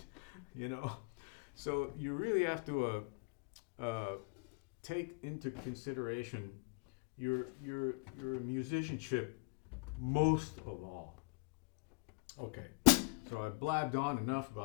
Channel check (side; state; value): right; quieter; 31.9 dB